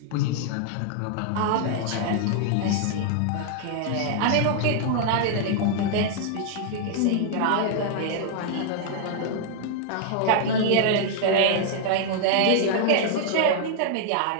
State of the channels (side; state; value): both; different; correlation 0.00